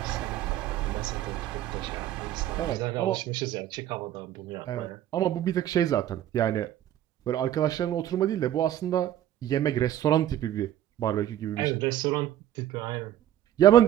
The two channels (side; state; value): left; quieter; 11.9 dB